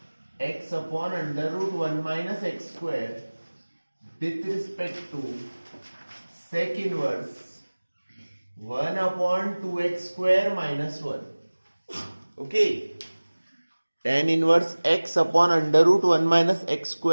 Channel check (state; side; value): inverted; both; correlation -1.00